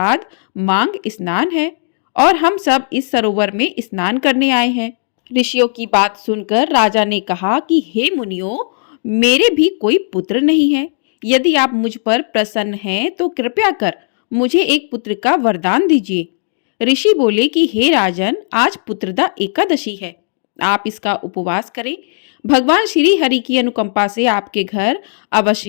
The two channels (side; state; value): right; silent; digital silence